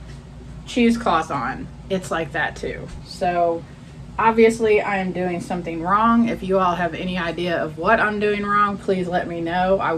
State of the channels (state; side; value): identical; both; correlation 1.00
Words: cheesecloth on, it's like that too. So obviously I am doing something wrong. If you all have any idea of what I'm doing wrong, please let me know. I